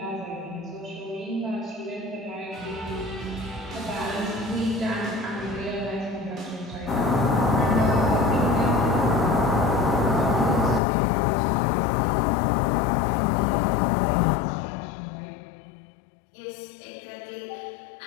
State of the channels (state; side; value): drops out; right; at 10.8 s